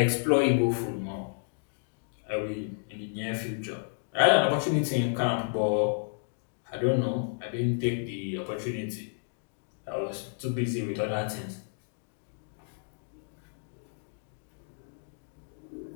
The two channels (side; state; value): right; silent; digital silence